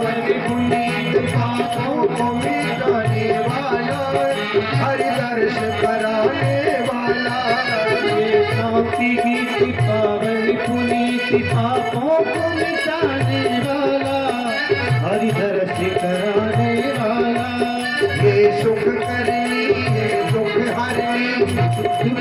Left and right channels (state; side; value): identical; both; correlation 1.00